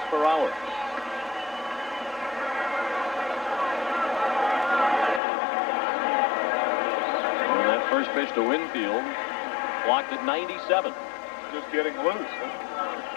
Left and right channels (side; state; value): right; drops out; at 5.2 s